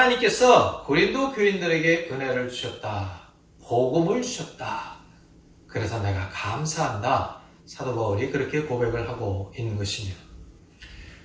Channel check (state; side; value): identical; both; correlation 1.00